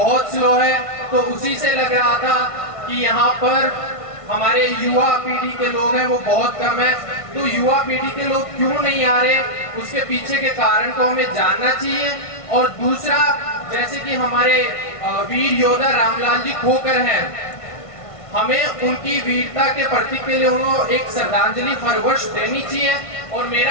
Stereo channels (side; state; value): right; late; 1.5 ms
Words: स्लो है, तो उसी से लग रहा था कि यहाँ पर हमारे युवा पीढ़ी के लोग हैं वो बहुत कम है। तो युवा पीढ़ी के लोग क्यों नहीं आ रहे, उसके पीछे के कारण को हमें जानना चाहिए। और दूसरा, जैसे कि हमारे वीर योद्धा रामलाल जी खोखर हैं, हमें उनकी वीरता के प्रतीक के लिए उन्हें एक श्रद्धांजलि हर वर्ष देनी चाहिए। और